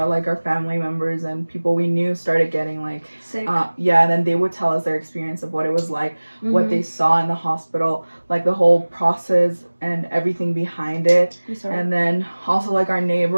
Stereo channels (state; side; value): inverted; both; correlation -1.00